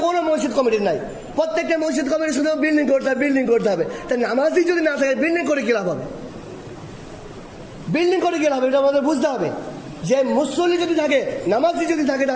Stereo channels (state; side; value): identical; both; correlation 1.00